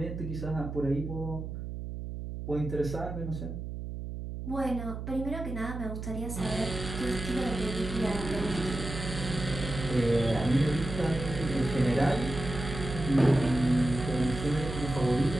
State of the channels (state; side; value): noise; right; hum, 7 dB below the sound